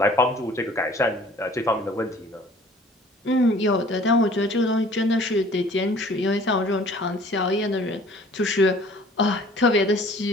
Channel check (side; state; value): both; normal; correlation 0.52